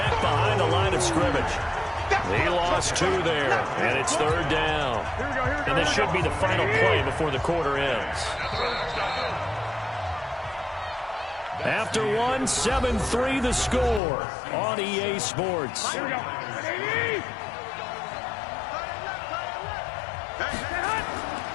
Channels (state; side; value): drops out; right; at 14.0 s